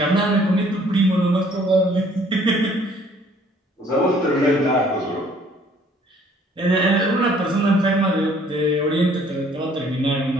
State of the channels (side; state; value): both; normal; correlation 0.59